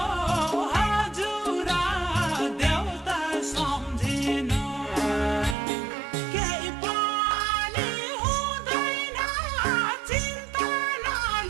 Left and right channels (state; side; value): drops out; left; at 5.6 s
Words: हजुर देउता सम्झिनु केही पनि हुँदैन चिन्ता